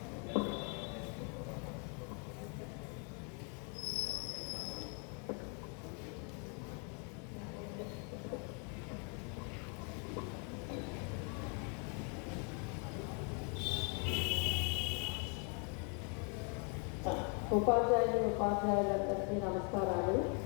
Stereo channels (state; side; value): quieter; right; 37.7 dB